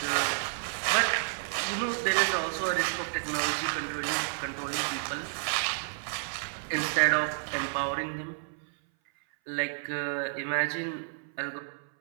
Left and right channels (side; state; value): left; silent; 57 dB below the other